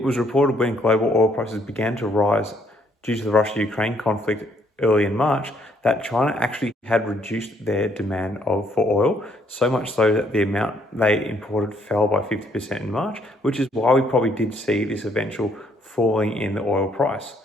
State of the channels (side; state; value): both; normal; correlation 0.68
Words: was reported when global oil prices began to rise due to the Russia-Ukraine conflict early in March that China actually had reduced their demand for oil, so much so that the amount they imported fell by 50% in March, which is why we probably did see this eventual falling in the oil price.